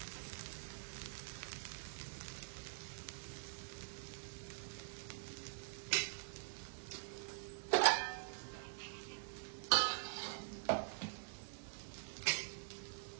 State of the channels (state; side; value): silent; left; digital silence